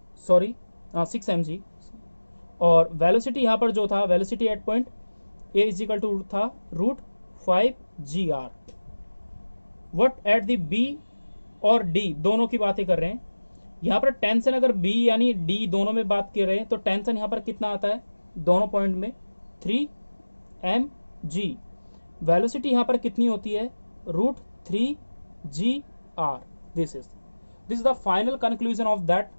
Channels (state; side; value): inverted; both; correlation -1.00